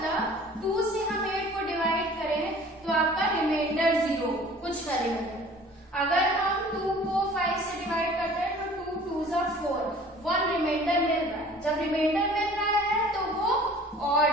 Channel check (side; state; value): both; normal; correlation 0.48